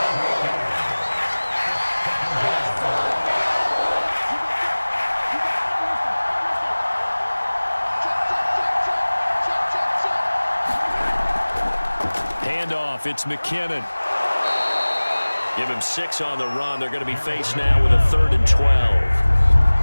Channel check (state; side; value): inverted; both; correlation -1.00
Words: Handoff, it's McKinnon. Give him 6 on the run. They're going to be faced now with a 3rd and 12.